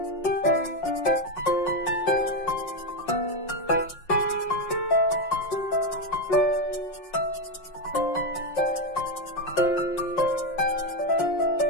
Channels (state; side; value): late; right; 5.5 ms